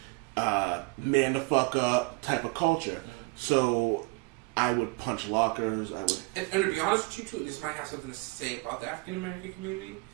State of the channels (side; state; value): left; quieter; 27.5 dB